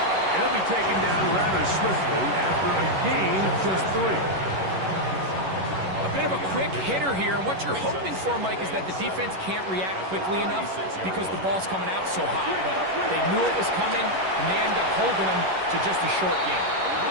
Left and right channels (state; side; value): late; left; 11 ms